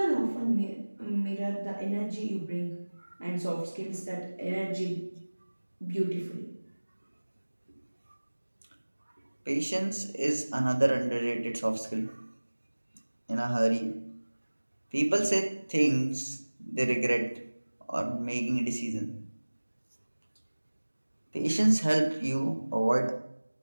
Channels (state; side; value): inverted; both; correlation -1.00